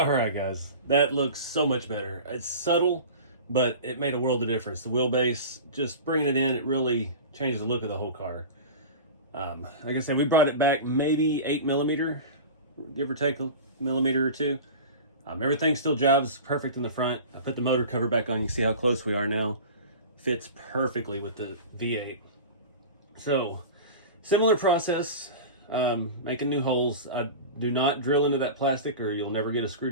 right, guys, that looks so much better. It's subtle, but it made a world of difference. The wheelbase, just bringing it in, it really changed the look of the whole car. Like I said, we brought it back maybe 8mm, give or take a millimeter or two. Everything still jobs perfect in the front. I put the motor cover back on. You see how close we are now. Fits perfectly with the V8. So, similar process, making new holes. I do not drill into that plastic or you'll never get a screw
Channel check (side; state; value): both; inverted; correlation -0.33